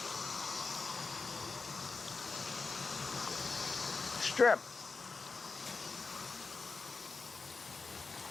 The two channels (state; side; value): quieter; right; 4.2 dB